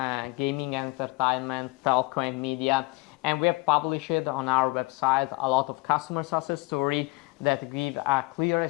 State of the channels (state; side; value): quieter; right; 24.5 dB